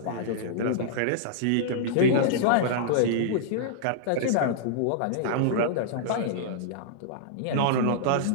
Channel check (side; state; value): both; different; correlation -0.02